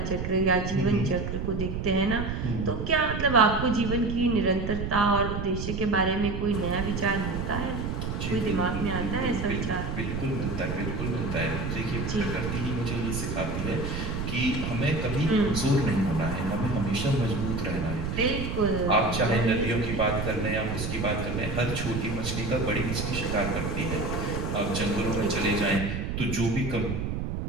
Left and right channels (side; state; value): right; noise; rumble, 3 dB below the sound